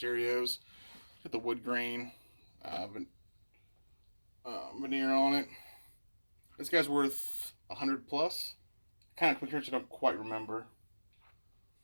Got the wood grain veneer on it. This guy's worth 100 plus. Kind of quick search, I don't quite remember.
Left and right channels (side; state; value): both; inverted; correlation -1.00